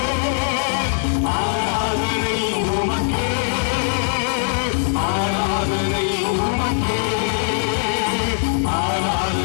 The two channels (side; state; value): right; silent; digital silence